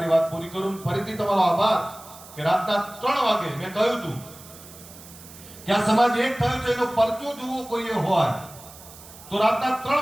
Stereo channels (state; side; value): noise; right; hiss, 19 dB below the sound